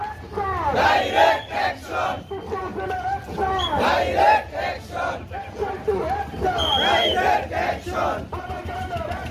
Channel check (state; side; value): identical; both; correlation 1.00